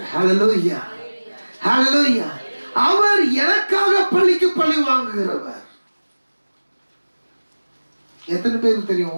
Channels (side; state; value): both; inverted; correlation -1.00